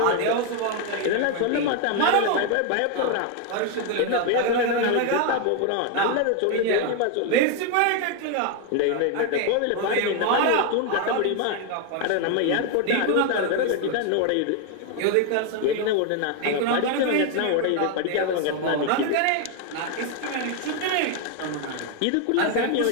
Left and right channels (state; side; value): different; both; correlation 0.01